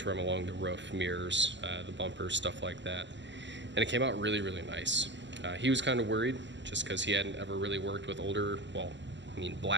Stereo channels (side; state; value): left; late; 0.53 ms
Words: along the roof, mirrors, the bumpers, stuff like that. And it came out really, really nice. He was kind of worried just because he hadn't ever really worked with older, well, I mean